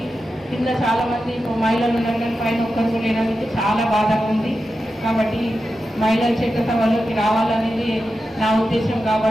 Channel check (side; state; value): both; normal; correlation 0.90